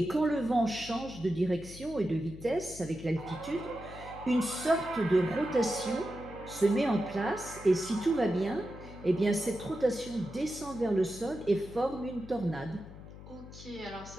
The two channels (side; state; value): left; noise; hum, 15 dB below the sound